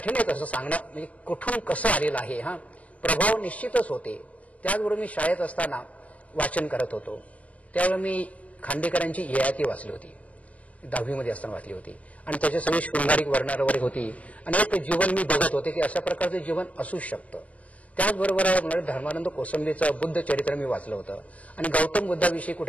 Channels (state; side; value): late; right; 0.066 ms